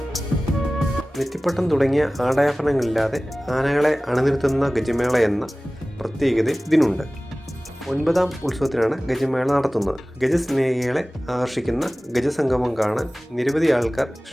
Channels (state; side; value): normal; both; correlation 0.98